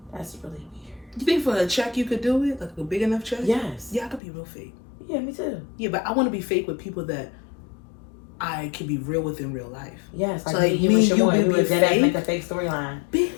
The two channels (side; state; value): right; drops out; at 4.2 s